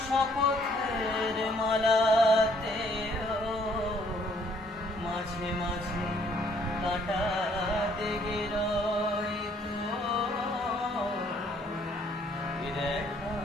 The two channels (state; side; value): normal; both; correlation 0.64